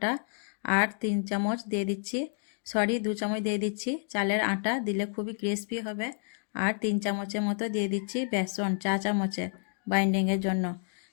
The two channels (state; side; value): silent; right; 58 dB below the other